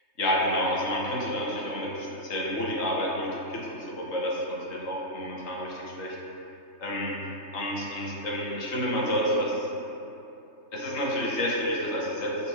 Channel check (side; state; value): right; late; 3.3 ms